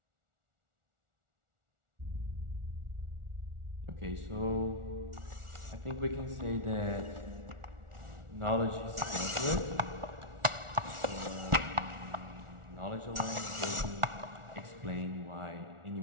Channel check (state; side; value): late; left; 1.4 ms